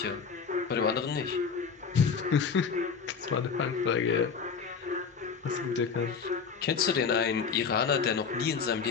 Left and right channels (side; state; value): right; quieter; 5.9 dB